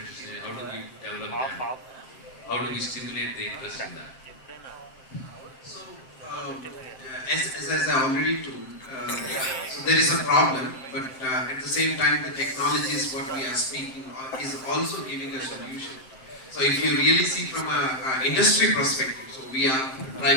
How do we develop them? How do we stimulate the interest in that? So, as I already told, so there is a problem, but at the same time, the technology is what we are speaking is also giving a solution. So if you really see from a industry perspective, so we are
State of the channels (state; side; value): late; right; 7.6 ms